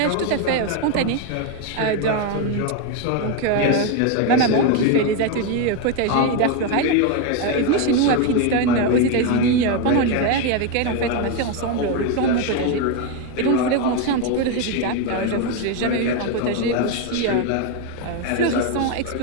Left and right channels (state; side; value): different; both; correlation 0.02